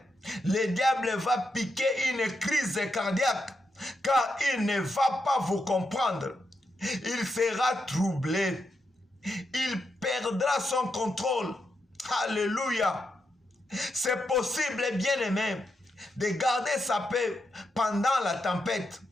Le diable va piquer une crise cardiaque car il ne va pas vous comprendre. Il sera troublé. Il perdra son contrôle. Alléluia. C'est possible, bien-aimé, de garder sa paix pendant la tempête.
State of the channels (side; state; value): both; normal; correlation 0.84